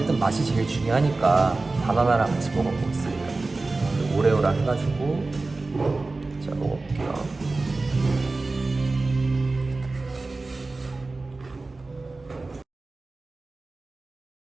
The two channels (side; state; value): left; quieter; 3.4 dB